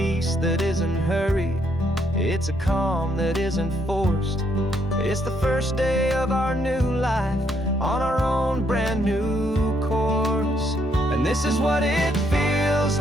that isn't hurried, it's a calm that isn't forced. It's the first day of our new life on our own brand new course. And this is what it feels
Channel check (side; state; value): both; normal; correlation 0.73